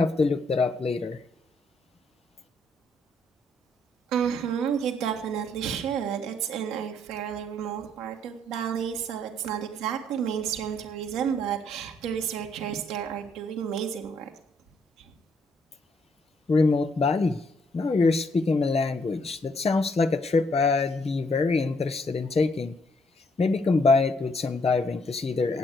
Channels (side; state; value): both; normal; correlation 0.70